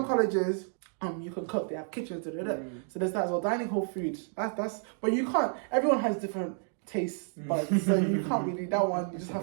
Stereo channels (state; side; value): silent; left; 57 dB below the other